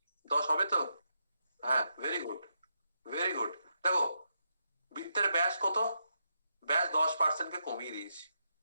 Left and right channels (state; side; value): inverted; both; correlation -0.83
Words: 10 হবে তো? হ্যাঁ, ভেরি গুড, ভেরি গুড। দেখো, বৃত্তের ব্যাস কত? ব্যাস 10% কে কমিয়ে দিয়েছি,